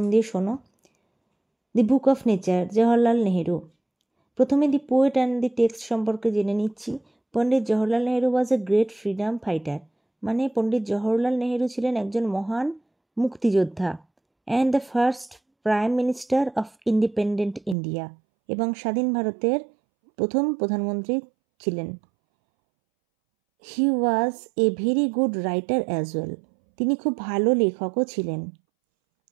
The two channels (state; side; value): drops out; left; at 17.8 s